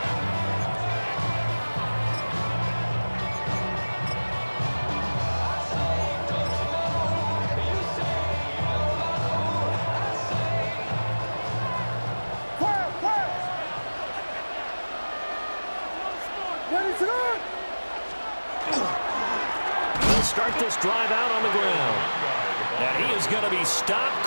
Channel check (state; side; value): inverted; both; correlation -1.00